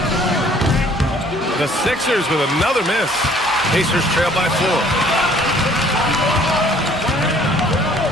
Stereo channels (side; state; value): both; normal; correlation 0.57